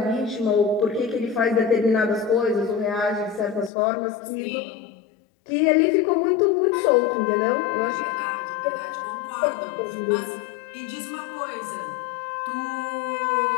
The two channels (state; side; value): drops out; right; at 3.7 s